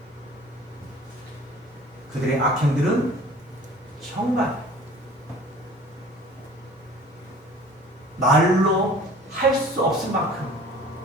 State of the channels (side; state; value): both; normal; correlation 0.47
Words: 그들의 악행들은 정말 말로 할 수 없을 만큼